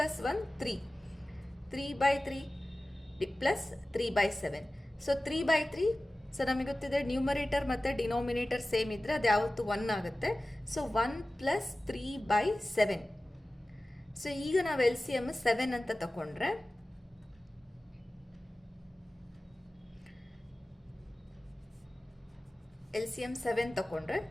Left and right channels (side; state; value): both; normal; correlation 0.97